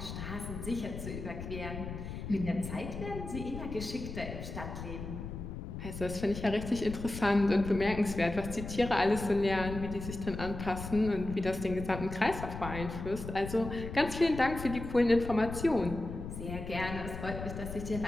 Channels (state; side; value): noise; left; rumble, 8 dB below the sound